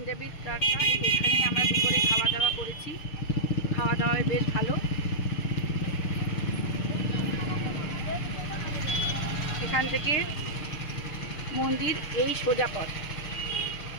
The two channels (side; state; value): right; late; 6.6 ms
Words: তড়কা, এখানেই আমরা দুপুরে খাওয়া দাওয়া করেছি। খাওয়া দাওয়ায় বেশ ভালো। এখান থেকে মন্দির এই সোজা পথ।